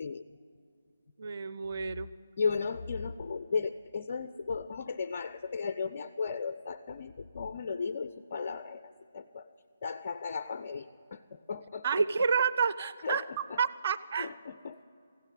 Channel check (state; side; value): inverted; both; correlation -0.74